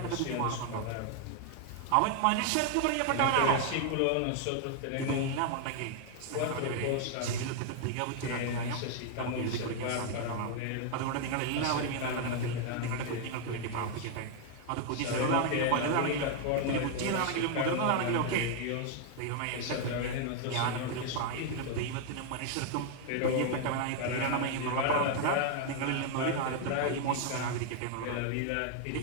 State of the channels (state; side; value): different; both; correlation 0.00